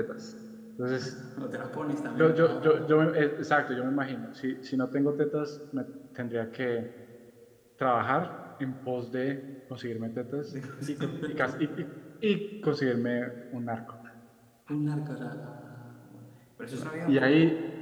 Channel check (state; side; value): identical; both; correlation 1.00